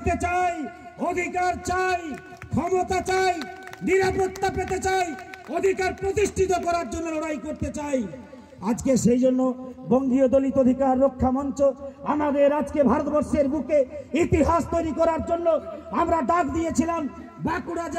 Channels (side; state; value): both; identical; correlation 1.00